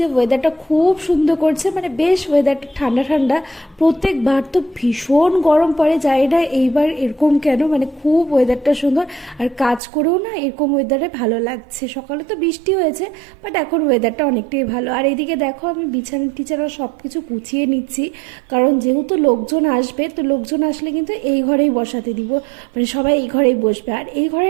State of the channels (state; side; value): drops out; left; at 9.8 s